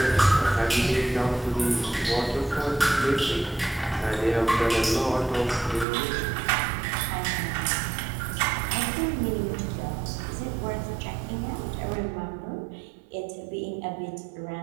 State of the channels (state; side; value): drops out; left; at 5.9 s